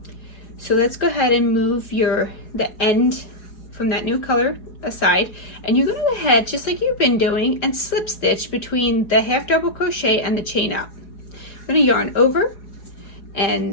So let's go ahead and move the end from that new color aside, and you're going to go ahead, just like you've been doing, and slip stitch between the 1/2 double crochet and the chain up. I'm going to yarn over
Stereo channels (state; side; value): late; right; 5.1 ms